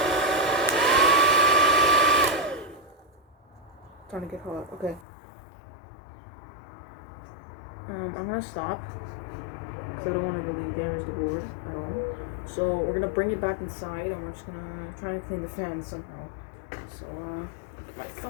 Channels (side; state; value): right; drops out; at 5.1 s